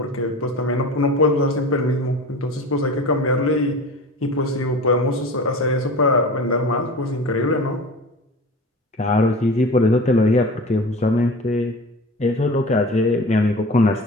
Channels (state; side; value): normal; both; correlation 0.36